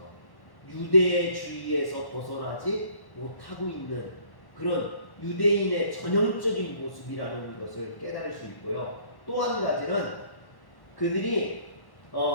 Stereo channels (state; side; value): late; right; 1.1 ms